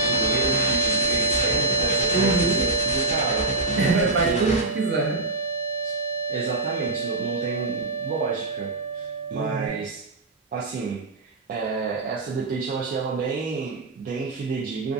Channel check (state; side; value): quieter; left; 3.2 dB